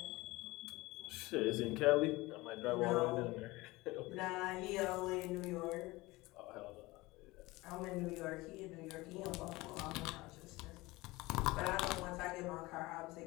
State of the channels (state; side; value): quieter; right; 21.1 dB